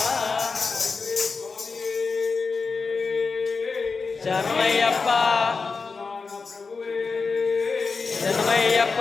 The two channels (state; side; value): quieter; right; 4.6 dB